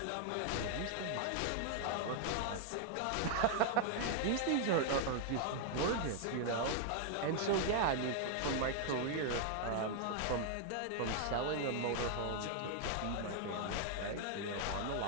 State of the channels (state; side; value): different; both; correlation 0.00